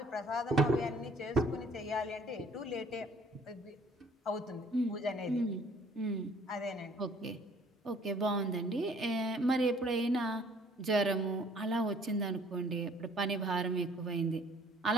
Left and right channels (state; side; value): normal; both; correlation 0.58